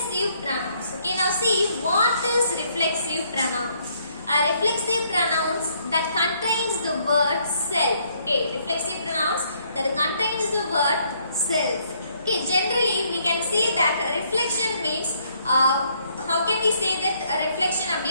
pronouns. Okay. Now see what is reflexive pronouns. Reflexive pronouns that contains the word self. Okay, reflexive pronouns that contains the word self. Okay, generally we can say that reflection means how can we say that reflection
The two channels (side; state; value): both; inverted; correlation -0.69